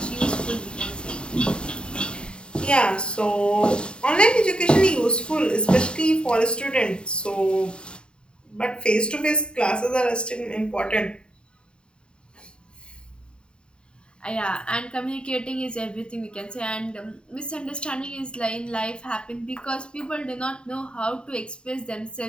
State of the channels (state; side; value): late; right; 0.051 ms